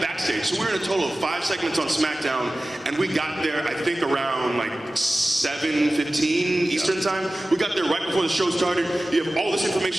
So we were in a total of 5 segments on SmackDown, and we got there, I think, around like 7:15 Eastern time. We got there right before the show started. You have all this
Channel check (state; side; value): normal; both; correlation 0.96